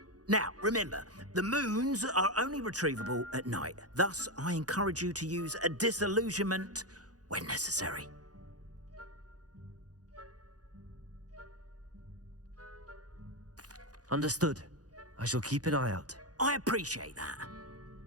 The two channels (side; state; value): left; late; 0.68 ms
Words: Now, remember, the moons are only retrievable at night. Thus, I encourage you to use a disillusionment when necessary. Understood. I shall keep an eye out. I appreciate that.